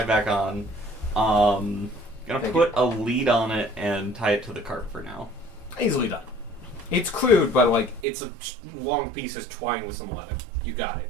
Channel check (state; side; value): drops out; left; at 8.1 s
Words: back on. Gonna Thank put a lead on it and tie it to the cart for now. Easily done. It's crude, but like it's a long piece of twine with some leather. You got